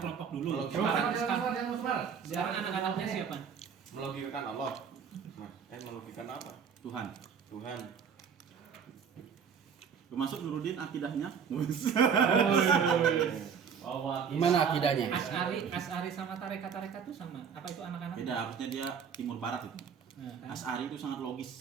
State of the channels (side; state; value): left; quieter; 6.9 dB